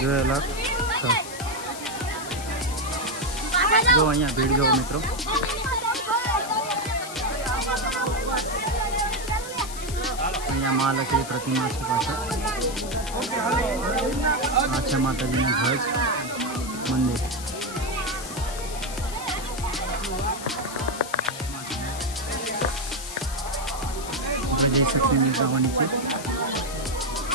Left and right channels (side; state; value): left; noise; hiss, 11 dB below the sound